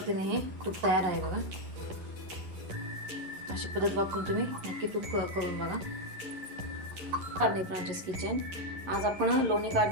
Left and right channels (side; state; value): left; late; 11 ms